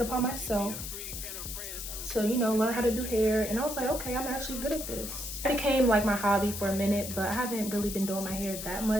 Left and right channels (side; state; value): left; noise; hiss, 7 dB below the sound